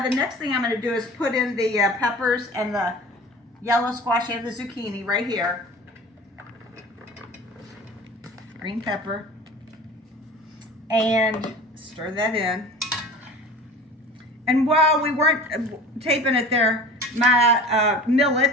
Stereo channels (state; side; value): normal; both; correlation 0.39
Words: the next thing I'm going to do is put in the peppers and the yellow squash and the zucchini right here. Green pepper. And stir that in. And while we weren't taping it there, my